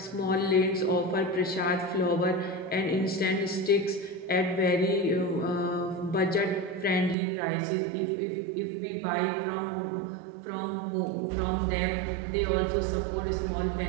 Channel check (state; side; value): drops out; left; at 7.2 s